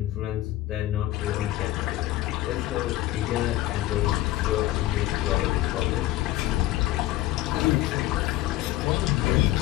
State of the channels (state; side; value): quieter; right; 15.9 dB